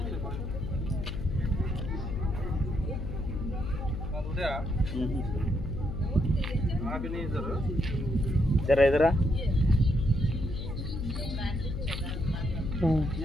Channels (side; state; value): left; noise; hum, 4 dB below the sound